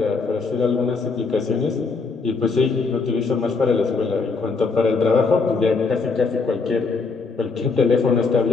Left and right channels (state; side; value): quieter; right; 4.4 dB